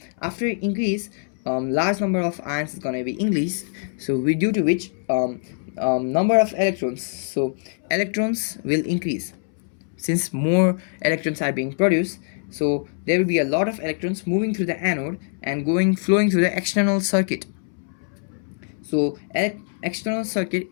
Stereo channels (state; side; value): silent; right; 63 dB below the other